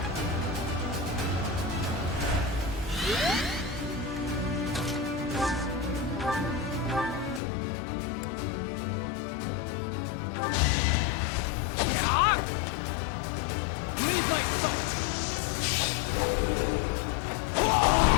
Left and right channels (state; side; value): drops out; right; at 7.4 s